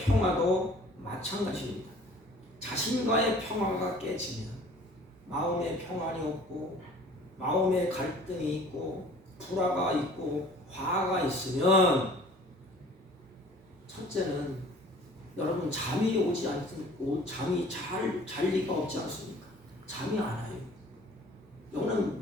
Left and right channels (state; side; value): normal; both; correlation 0.50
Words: 마찬가지입니다. 자신과의 평화가 깨지면 마음에 평안이 없고 마음에 갈등이 있고 불화가 있고 화가 있으면 첫째는 여러분 잠이 오지 않고 잠이 잘 리가 없지 않습니까? 잠이 안 와요.